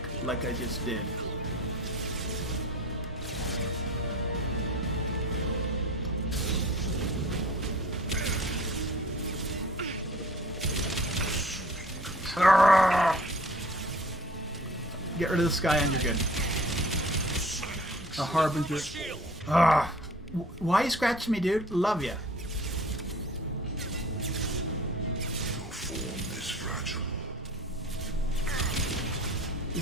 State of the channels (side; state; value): both; normal; correlation 0.47